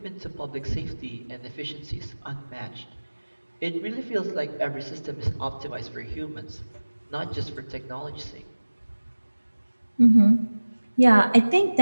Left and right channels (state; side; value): inverted; both; correlation -1.00